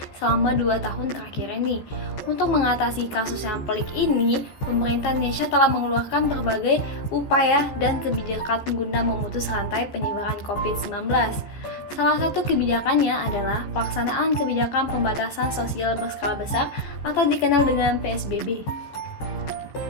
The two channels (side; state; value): right; late; 14 ms